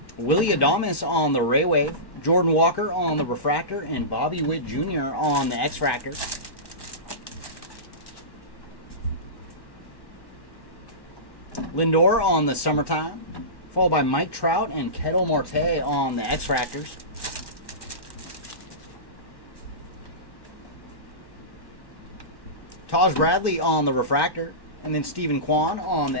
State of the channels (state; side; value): late; right; 1.1 ms